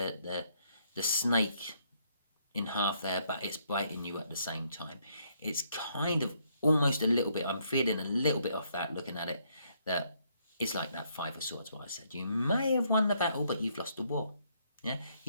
snake in half there, but it's biting you at the same time. It's kind of almost a little bit. I'm feeling a little bit off that looking at it. That it's like that Five of Swords. What I said. You may have won the battle, but you've lost the war. Yeah.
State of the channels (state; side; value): inverted; both; correlation -0.71